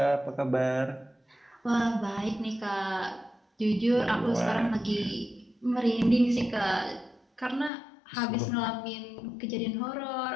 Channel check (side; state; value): right; drops out; at 7.7 s